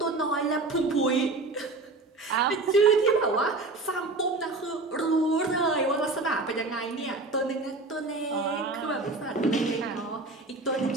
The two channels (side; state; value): left; quieter; 3.3 dB